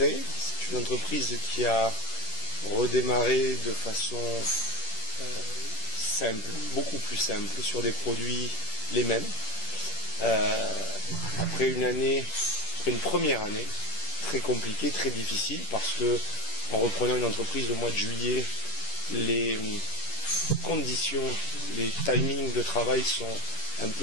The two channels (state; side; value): late; right; 10 ms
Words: c'est une entreprise qui a redémarré de façon simple, beaucoup plus simple, sur des produits les mêmes. Après une première année très compliquée, très difficile, parce que en reprenant une entreprise au mois de juillet, les conditions, les timings de travail sont un